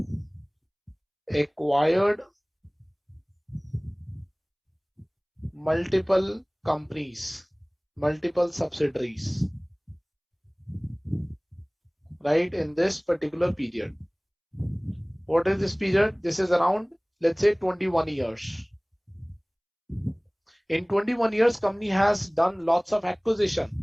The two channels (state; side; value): identical; both; correlation 1.00